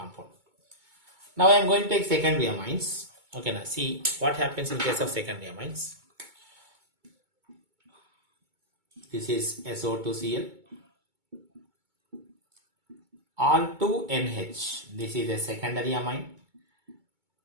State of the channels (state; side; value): late; left; 2.2 ms